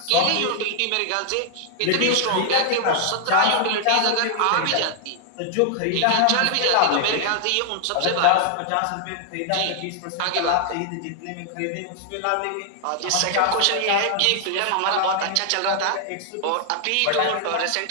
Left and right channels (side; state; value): both; different; correlation 0.00